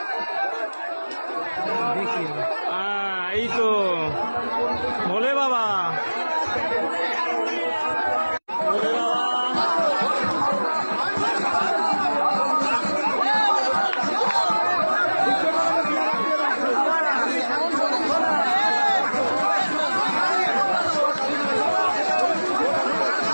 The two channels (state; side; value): inverted; both; correlation -1.00